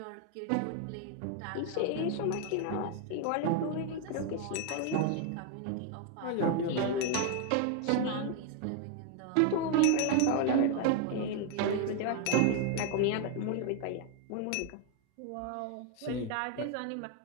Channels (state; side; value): different; both; correlation 0.00